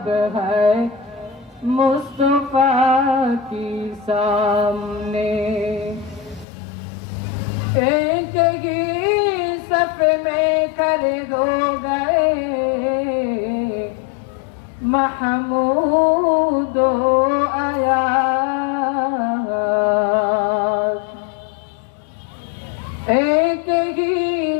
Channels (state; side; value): drops out; right; at 6.5 s